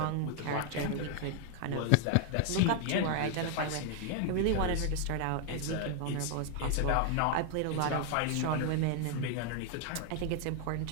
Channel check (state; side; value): different; both; correlation 0.00